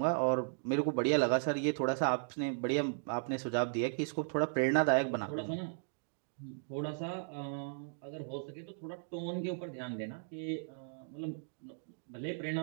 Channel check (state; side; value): silent; left; digital silence